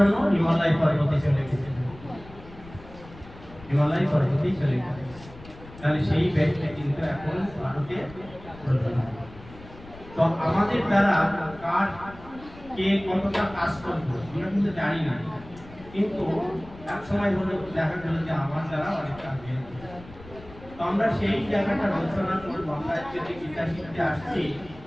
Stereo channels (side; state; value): left; noise; rumble, 19 dB below the sound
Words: হিমালয় পর্বতে চলে গেছেন, হিমালয় পর্বতেই চলে গেছেন। তাহলে সেই ব্যক্তি কিন্তু এখন ভারতে প্রধানমন্ত্রী। তো আমাদের দ্বারা কার কে কতটা কাজ করবো আমরা কিন্তু জানি না, কিন্তু এক সময় হলে দেখা গেল যে আমার দ্বারা অনেক কাজ হয়েছে। তো আমরা সেই জায়গাটা আলোচনা করবো। আমরা যদি গীতা শিখতে আসছি,